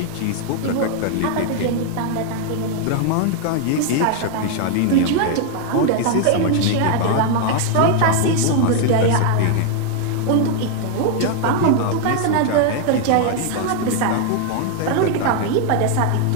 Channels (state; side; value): different; both; correlation 0.00